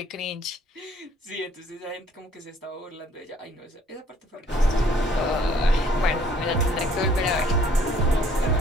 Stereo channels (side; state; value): both; normal; correlation 0.60